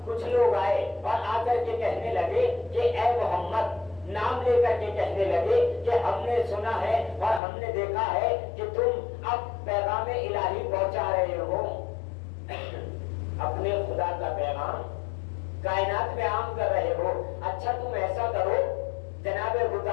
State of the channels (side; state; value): right; drops out; at 7.4 s